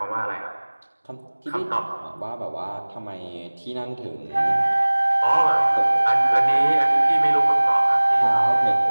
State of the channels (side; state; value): both; inverted; correlation -1.00